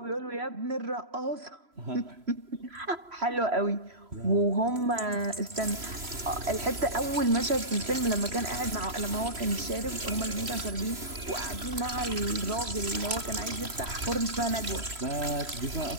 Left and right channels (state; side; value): late; left; 3.0 ms